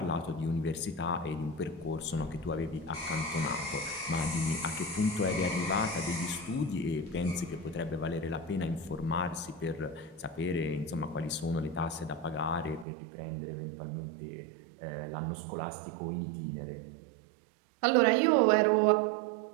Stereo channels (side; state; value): left; drops out; at 12.9 s